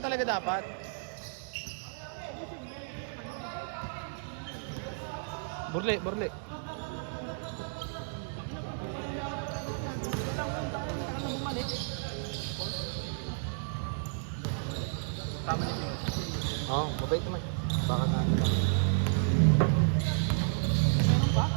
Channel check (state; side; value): silent; left; digital silence